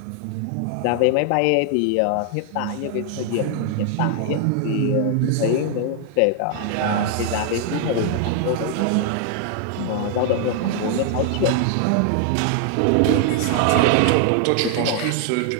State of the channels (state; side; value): different; both; correlation 0.00